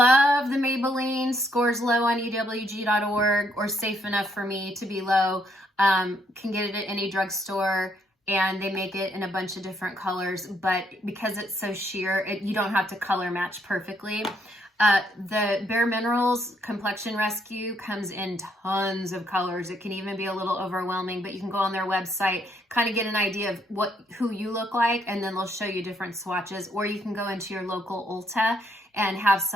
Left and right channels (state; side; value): normal; both; correlation 0.72